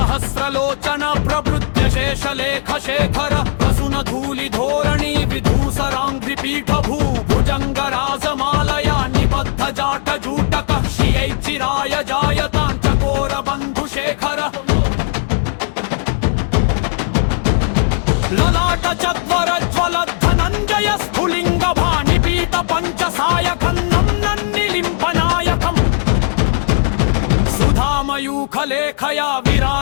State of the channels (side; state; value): right; silent; digital silence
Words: प्रभृत्य शेषलेख शेखर प्रसून धूलि धोरणी विधूसराङ्घ्रि पीठ भुजङ्ग राजमालया निबद्ध जाट जूटक श्रियै चिराय जायतां चकोर बन्धु शेखर ललाट चत्वर ज्वल धनञ्जय स्फुलिङ्ग भानिपीत पञ्चसायकन्नं नन्निलिम्पनायकम् सुधामयूखलेखया